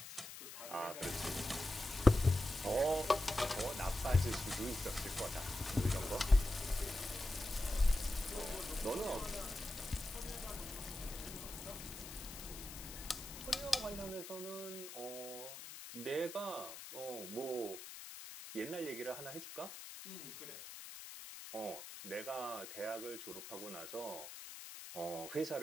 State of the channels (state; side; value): noise; left; hiss, 11 dB below the sound